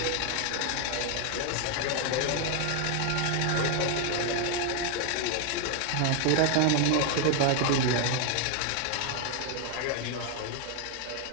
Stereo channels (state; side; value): different; both; correlation 0.00